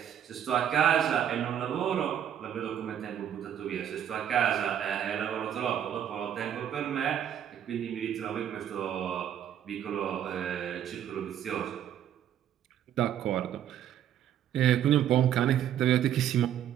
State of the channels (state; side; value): quieter; left; 10.0 dB